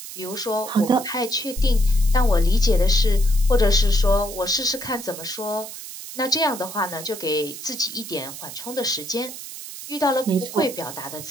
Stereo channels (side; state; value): right; noise; hiss, 11 dB below the sound